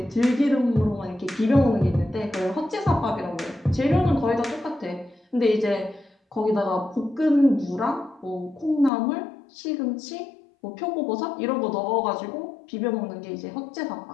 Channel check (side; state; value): right; drops out; at 8.9 s